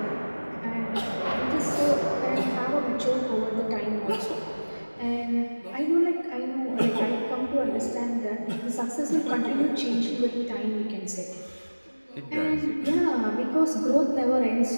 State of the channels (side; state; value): both; inverted; correlation -1.00